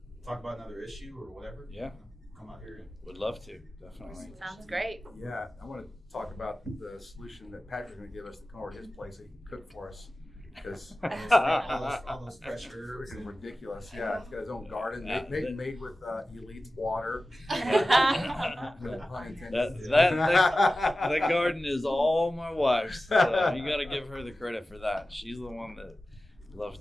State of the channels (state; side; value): normal; both; correlation 0.95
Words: talk about another issue or whatever, come out here. Would love to, definitely. Sounds great. Yeah, I want to talk about the solution that Patrick's going to give us to come over to his place so he can cook for us. Because all those fresh herbs. Freaking ridiculous. Yeah, he's got his own garden made with Elite water. That garden is all my wife's. So you got to give her the credit for that. She's the one that loves